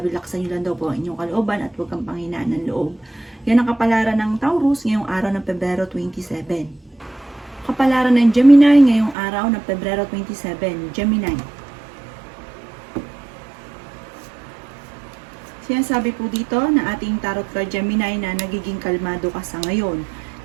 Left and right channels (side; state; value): left; drops out; at 9.2 s